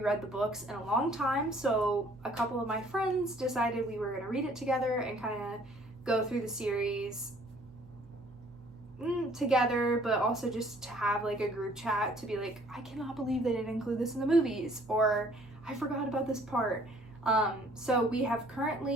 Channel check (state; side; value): noise; right; hum, 22 dB below the sound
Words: the books in a long time, so a couple of my friends decided we were going to read it together and kind of go through the series together, but also just to have like a group chat to be like, I cannot believe they didn't include this in the movies, or I forgot about this part. So I have